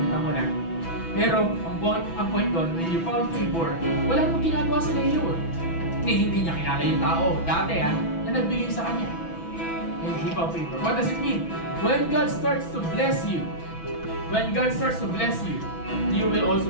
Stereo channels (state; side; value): late; right; 6.0 ms